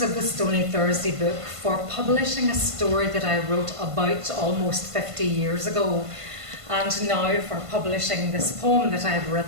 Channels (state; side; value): late; left; 1.5 ms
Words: of the Stony Thursday book for publishing a story that I wrote about almost 50 years ago, and now for publishing this poem that I've